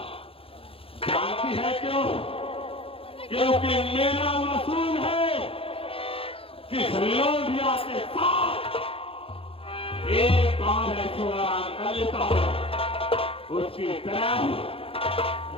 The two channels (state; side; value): late; right; 0.27 ms